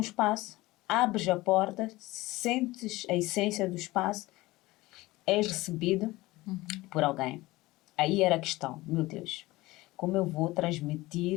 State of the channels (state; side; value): quieter; right; 19.5 dB